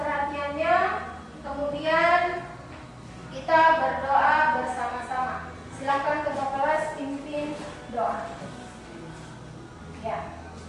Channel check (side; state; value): both; identical; correlation 1.00